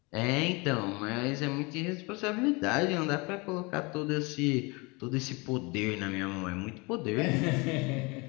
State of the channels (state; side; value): quieter; right; 27.2 dB